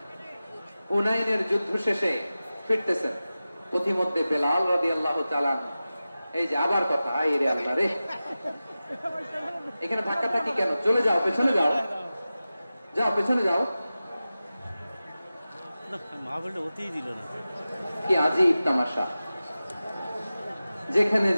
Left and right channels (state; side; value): inverted; both; correlation -0.95